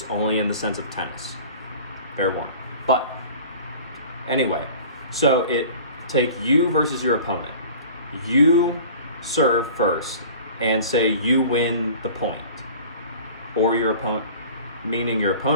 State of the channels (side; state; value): both; inverted; correlation -0.43